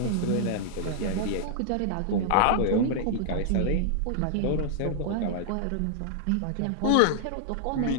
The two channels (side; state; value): both; different; correlation -0.01